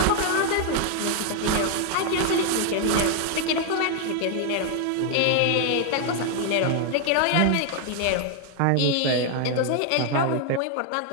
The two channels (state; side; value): different; both; correlation 0.00